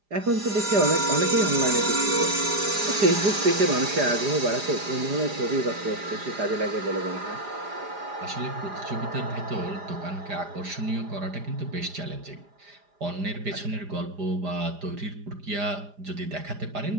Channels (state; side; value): late; left; 4.9 ms